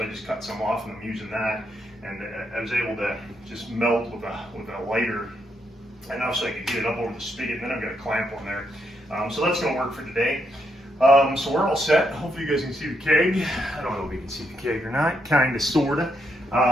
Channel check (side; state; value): both; normal; correlation 0.78